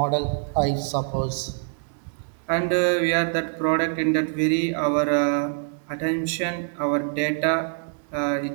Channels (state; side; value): silent; left; 62 dB below the other